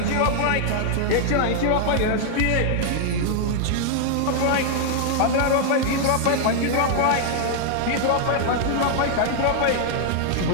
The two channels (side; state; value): both; different; correlation 0.00